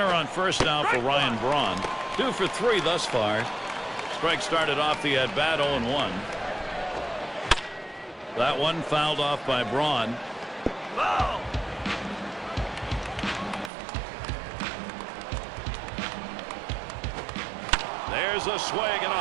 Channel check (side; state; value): left; drops out; at 13.7 s